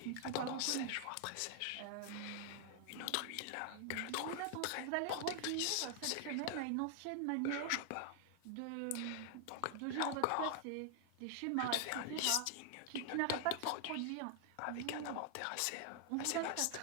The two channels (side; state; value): both; different; correlation 0.00